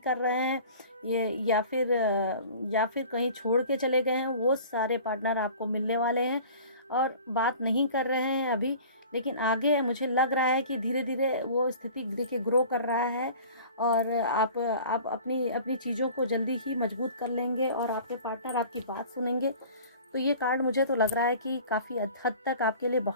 रहे हैं, ये या फिर कहीं छोड़ के चले गए हैं, वो सारे पार्टनर आपको मिलने वाले हैं और बात नहीं कर रहे हैं अभी। लेकिन आगे मुझे लग रहा है कि धीरे धीरे वो स्थिति देखिए ग्रो कर रहा है और आप अपनी अपनी चीज़ों को जल्दी ही मजबूत कर लेंगे और आपके पार्टनर आपकी बात सुनेंगे। तो ये कार्ड मुझे तो लग रहा है कि काफ़ी हद तक आपके लिए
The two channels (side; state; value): both; inverted; correlation -0.44